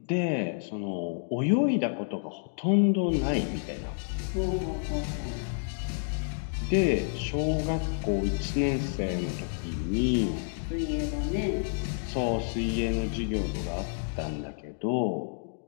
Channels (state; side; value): silent; right; digital silence